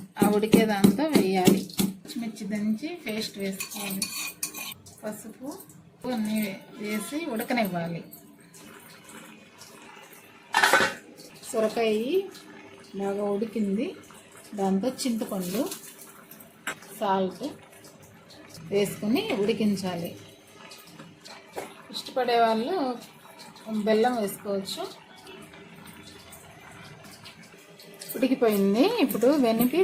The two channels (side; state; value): both; identical; correlation 1.00